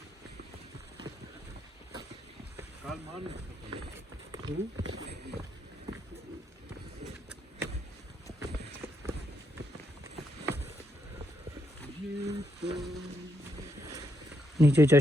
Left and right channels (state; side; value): normal; both; correlation 0.79